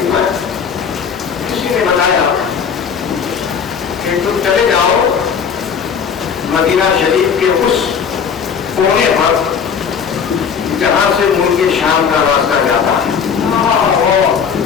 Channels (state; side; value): quieter; right; 6.8 dB